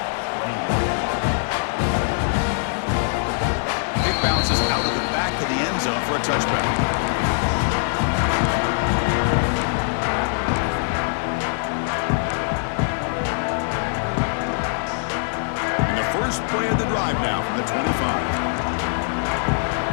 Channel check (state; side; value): silent; right; 64 dB below the other